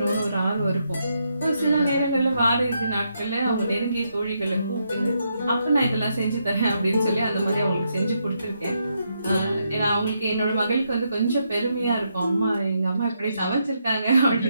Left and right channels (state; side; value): inverted; both; correlation -0.80